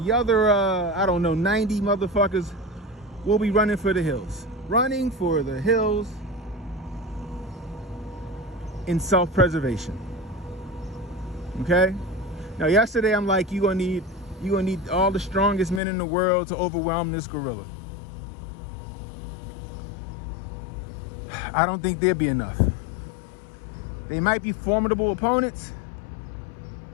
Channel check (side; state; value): right; drops out; at 15.8 s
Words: other, I don't know, 90 motherfuckers will be running for the hills. Running for the hills in self-preservation. Okay? Now, yesterday I'm like, you're gonna need all the strongest men in the world to overwhelm this gorilla. I don't think there'd be enough. They might be formidable opponents,